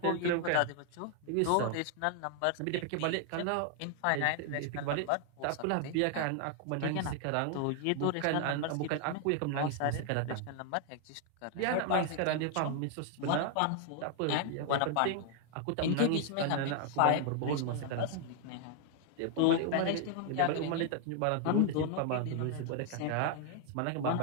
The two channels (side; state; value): both; different; correlation 0.00